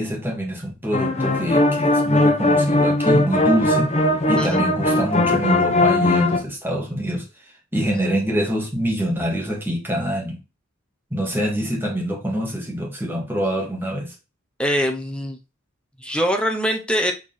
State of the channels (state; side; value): normal; both; correlation 0.55